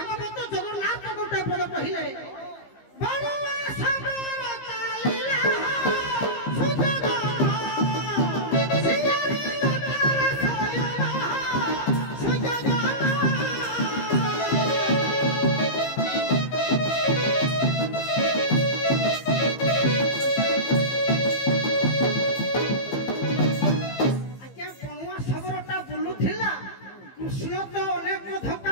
ଜଗନ୍ନାଥ ଗୋଟେ ପଦ କହିଲେ ବଳୁଆ ସବର ଚାଲିଲା ସୁଯୋଗ ସିଆରି ନଦର ସୟନ ସୁଯୋଗ କୃଷ୍ଣ ତ ଅନେକ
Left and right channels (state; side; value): late; right; 15 ms